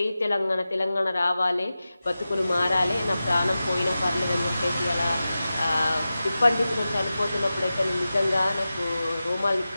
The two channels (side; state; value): both; inverted; correlation -0.94